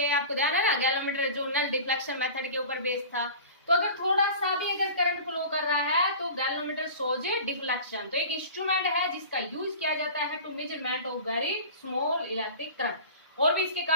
आपको ध्यान है ना, गैल्वेनोमीटर जो नल डिफ्लेक्शन मेथड के ऊपर बेस्ड था। तो अगर थोड़ा सा भी अगर करंट फ्लो कर रहा है तो गैल्वेनोमीटर शोज डिफ्लेक्शन। तो एक इंस्ट्रूमेंट है जिसका यूज किया जाता है to measurement of very small electric current. और भी इसके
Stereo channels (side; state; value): both; inverted; correlation -0.38